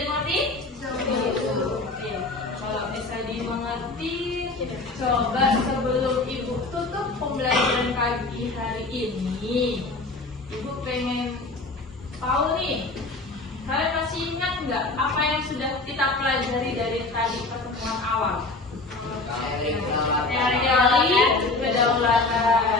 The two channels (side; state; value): right; quieter; 3.3 dB